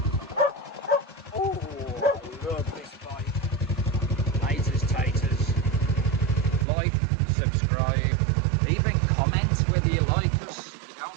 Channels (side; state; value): left; drops out; at 6.7 s